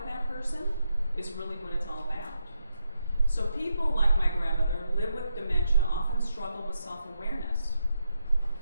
that person is really what it's all about. So people like my grandmother live with dementia, often struggle with self-awareness,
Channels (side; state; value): both; inverted; correlation -0.83